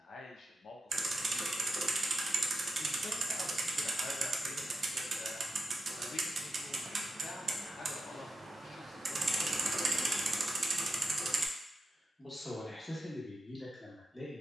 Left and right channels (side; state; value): both; normal; correlation 0.88